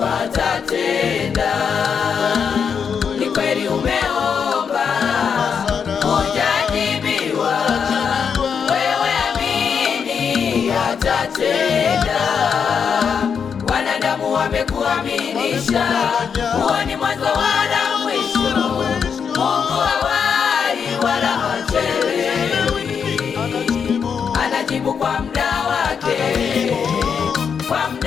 atatenda. Ni kweli umeomba hujajibiwa, wewe amini atatenda. Wanadamu wamekuaminisha, huo ni mwanzo wala mwisho. Mungu hawai wala hachelewi, anajibu kwa muda wake, kwa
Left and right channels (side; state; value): right; quieter; 6.7 dB